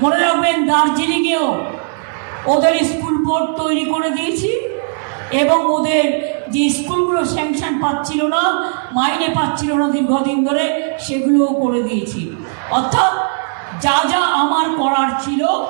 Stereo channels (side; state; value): left; silent; 58 dB below the other